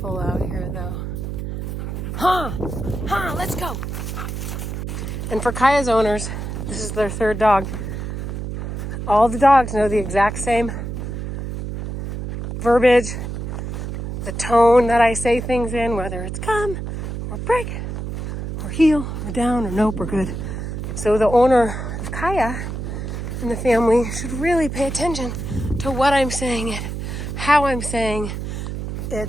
out here though. Let's go. And for Kaya's owners, this is their third dog. All the dogs know the exact same verbiage, the tone that I say things in, whether it's come or break or heel or down or nope or good. So the owner of Kaya and the family should really pay attention to what I'm saying it, how I'm saying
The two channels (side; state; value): right; noise; hum, 5 dB below the sound